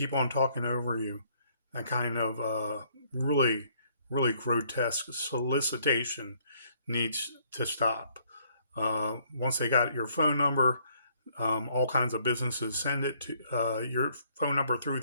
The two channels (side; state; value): both; inverted; correlation -0.65